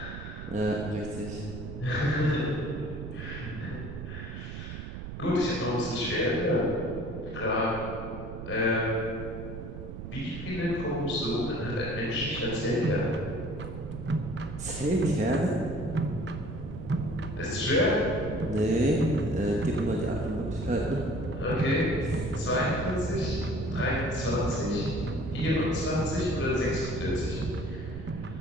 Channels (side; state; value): right; noise; rumble, 9 dB below the sound